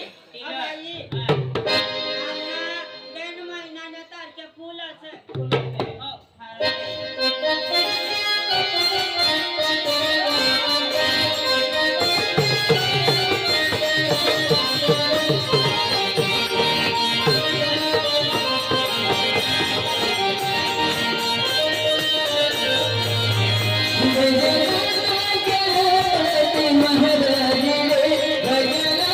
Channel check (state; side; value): identical; both; correlation 1.00